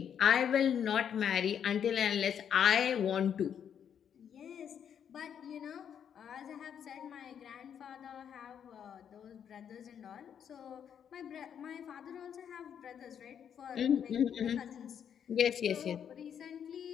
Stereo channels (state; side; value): quieter; right; 8.4 dB